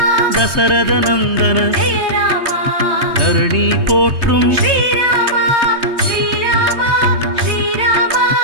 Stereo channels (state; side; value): late; left; 3.2 ms